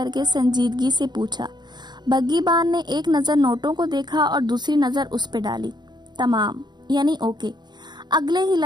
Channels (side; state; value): left; late; 0.21 ms